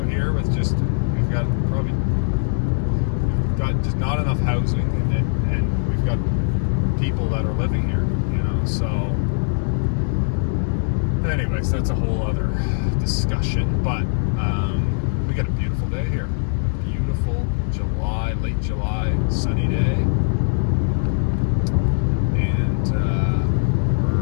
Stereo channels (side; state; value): right; silent; digital silence